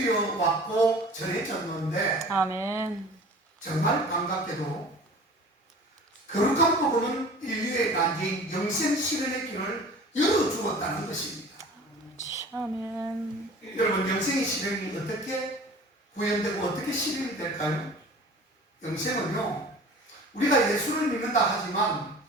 전해졌는데, 아멘. 정말 반갑게도 거룩한 복음은 인류의 난제인 영생 실현의 길을 열어주었다는 것입니다. 아멘. 여러분, 영생의 실현이 어떻게 구현되고 어떻게 실현이 될까요? 영생은요, 우리가 예수를 믿는다 하지만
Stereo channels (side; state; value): both; normal; correlation 0.43